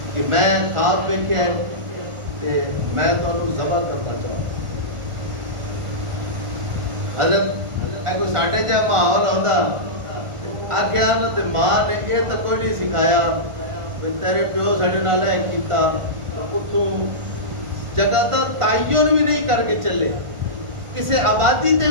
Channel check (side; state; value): left; late; 1.5 ms